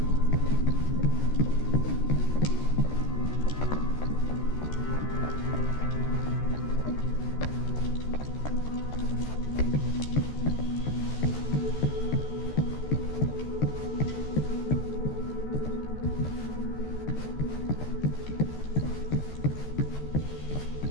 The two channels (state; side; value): late; right; 14 ms